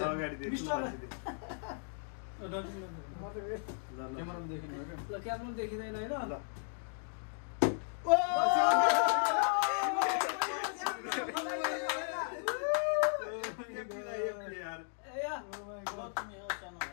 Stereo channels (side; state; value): right; silent; digital silence